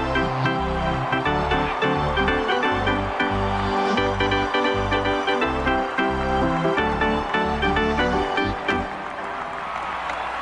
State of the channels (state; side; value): identical; both; correlation 1.00